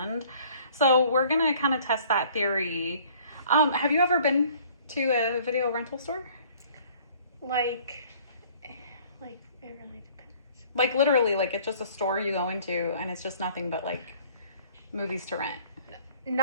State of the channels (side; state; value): both; inverted; correlation -0.55